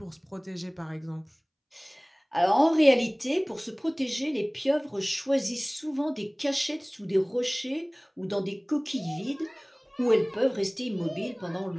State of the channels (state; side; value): identical; both; correlation 1.00